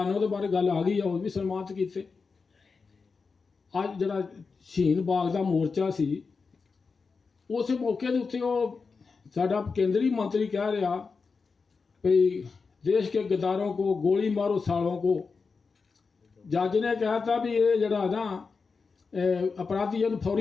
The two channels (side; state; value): right; quieter; 4.8 dB